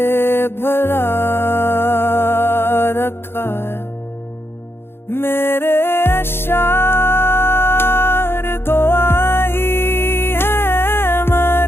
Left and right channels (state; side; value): late; right; 0.11 ms